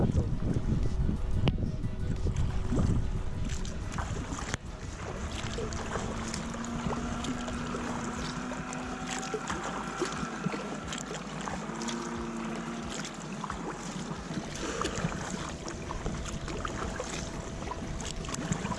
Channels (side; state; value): both; identical; correlation 1.00